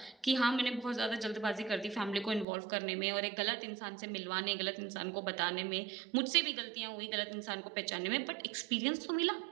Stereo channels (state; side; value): drops out; left; at 2.5 s